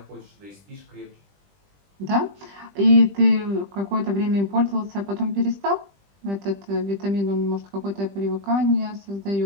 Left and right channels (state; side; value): late; left; 20 ms